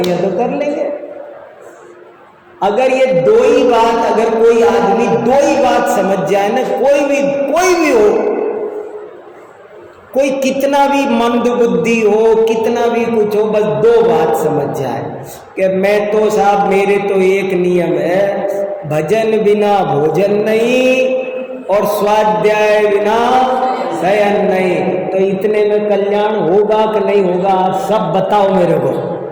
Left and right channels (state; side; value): identical; both; correlation 1.00